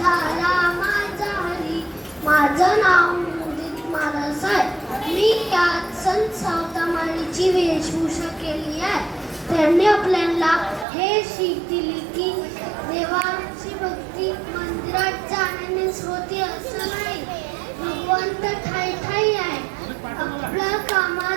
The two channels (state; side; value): drops out; left; at 10.9 s